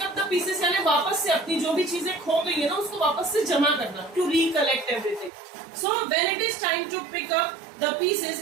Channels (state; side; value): drops out; left; at 5.3 s